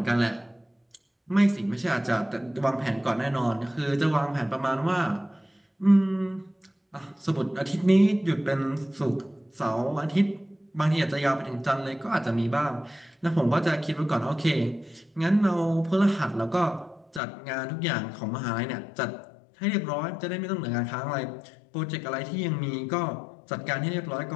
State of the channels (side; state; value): right; drops out; at 17.2 s